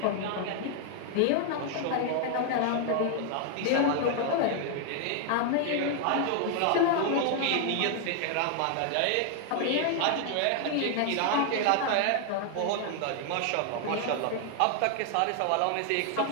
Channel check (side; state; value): both; different; correlation 0.00